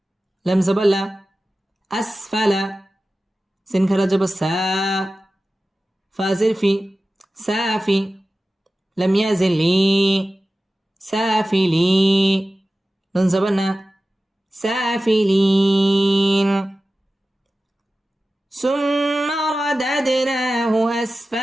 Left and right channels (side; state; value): both; normal; correlation 0.95